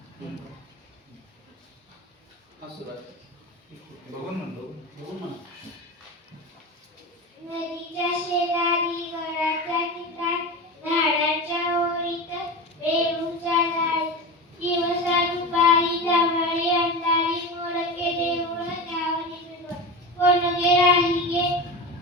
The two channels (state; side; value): normal; both; correlation 0.25